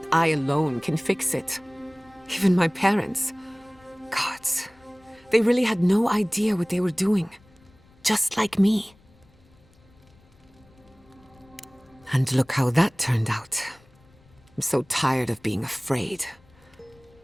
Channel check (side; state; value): left; noise; rumble, 29 dB below the sound